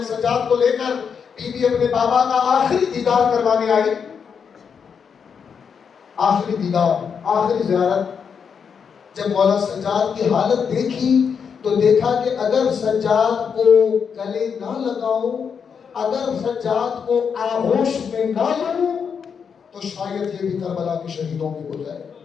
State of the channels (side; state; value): right; quieter; 6.6 dB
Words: سجاد کو لے کر بی بی اپنے بابا کا آخری دیدار کروانے آئی، آخری دیدار، آخری زیارت، جب مولا سجاد کی حالت دیکھی تو دیکھا کہ اگر سجاد کو گلے نہ لگاؤں، اگر سجاد کو آغوش میں نہ لوں تو شاید یہ بھی کربلا کے شہیدوں میں ہو جائے.